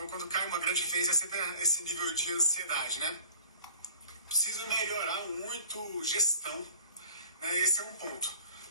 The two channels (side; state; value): both; inverted; correlation -0.46